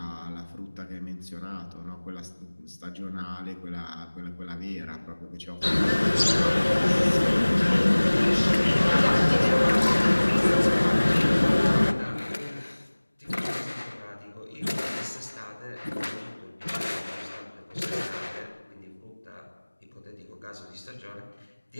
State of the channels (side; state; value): both; inverted; correlation -1.00